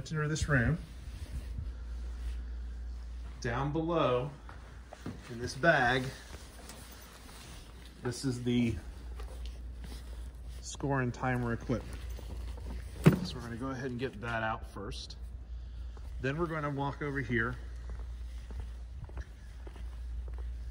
into this room. Down below, in this bag, this is the score and timer equipment. So we're going to go ahead and get that out first. Then we're going to walk over here.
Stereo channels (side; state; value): both; identical; correlation 1.00